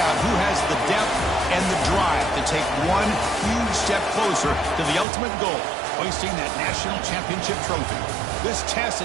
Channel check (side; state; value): left; drops out; at 5.1 s